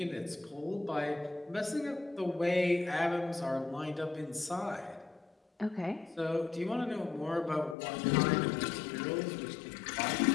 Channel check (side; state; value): right; drops out; at 7.8 s